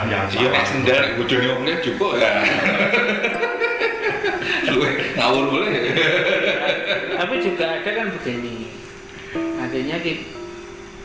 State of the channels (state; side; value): identical; both; correlation 1.00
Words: yang salah. Iya, sendal ujungnya omnya cukup ya. Ngawur boleh. Tapi juga ada kan begini, artinya